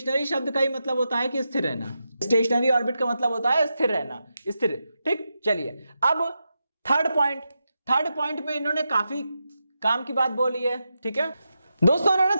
शब्द का ही मतलब होता है कि स्थिर रहना। स्टेशनरी ऑर्बिट का मतलब होता है स्थिर रहना, स्थिर। ठीक, चलिए अब थर्ड पॉइंट में इन्होंने काफी काम की बात बोली है। ठीक है दोस्तों, इन्होंने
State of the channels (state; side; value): inverted; both; correlation -0.87